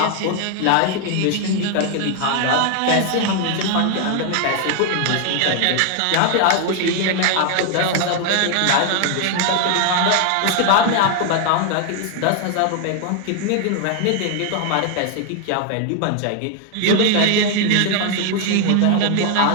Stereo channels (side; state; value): both; different; correlation 0.00